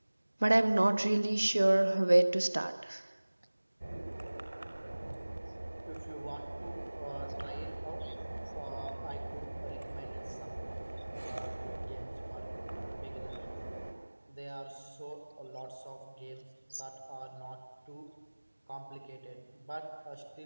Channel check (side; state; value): both; inverted; correlation -1.00